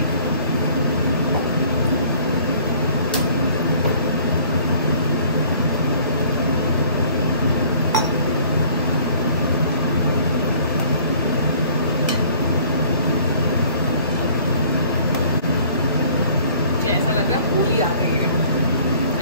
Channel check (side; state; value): both; inverted; correlation -0.53